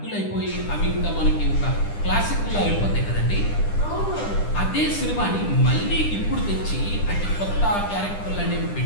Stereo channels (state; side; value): late; right; 10 ms